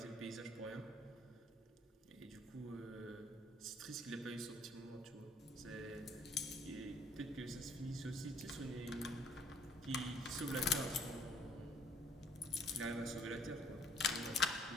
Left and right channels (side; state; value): both; normal; correlation 0.60